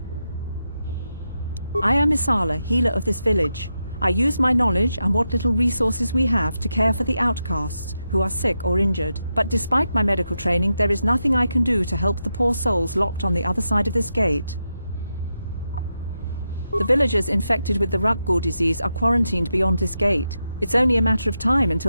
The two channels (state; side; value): inverted; both; correlation -0.87